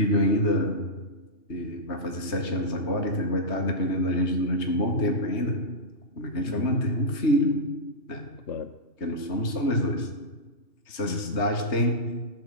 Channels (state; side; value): late; right; 3.2 ms